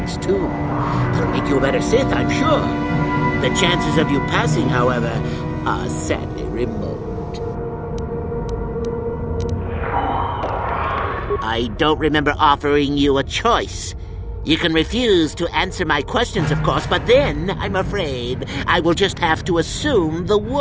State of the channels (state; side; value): identical; both; correlation 1.00